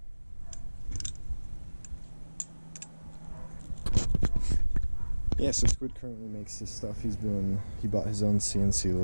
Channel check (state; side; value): inverted; both; correlation -1.00